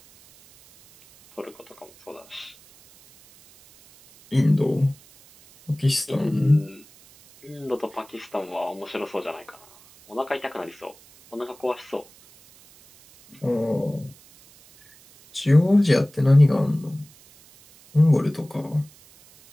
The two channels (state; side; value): noise; right; hiss, 26 dB below the sound